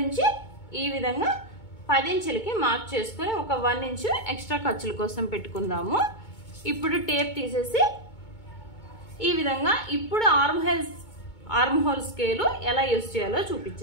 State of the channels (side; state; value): right; late; 2.2 ms